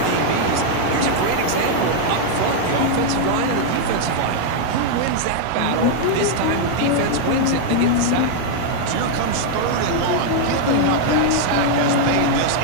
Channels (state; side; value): different; both; correlation 0.00